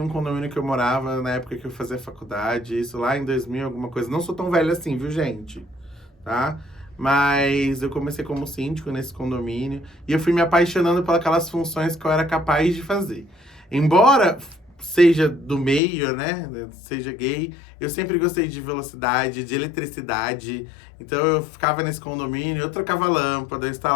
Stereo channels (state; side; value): drops out; right; at 15.8 s